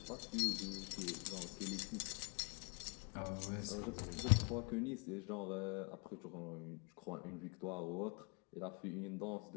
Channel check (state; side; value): quieter; right; 33.6 dB